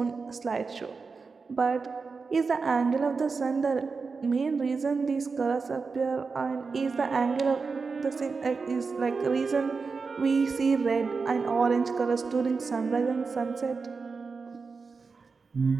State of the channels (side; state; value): left; quieter; 4.7 dB